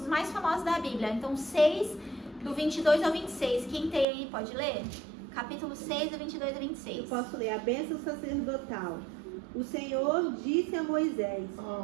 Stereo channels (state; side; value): drops out; left; at 4.0 s